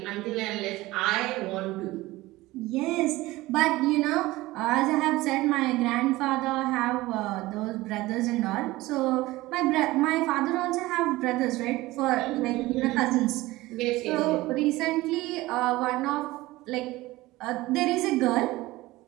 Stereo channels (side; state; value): left; quieter; 18.9 dB